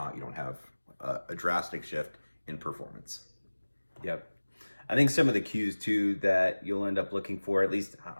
You don't have a drastic shift in performance. Yep. I think some of the cues too that you'll end up looking for, at least,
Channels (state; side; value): inverted; both; correlation -1.00